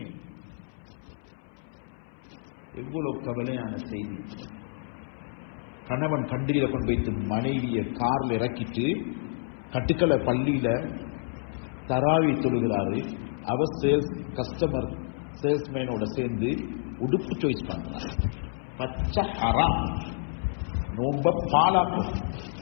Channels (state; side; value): silent; right; 59 dB below the other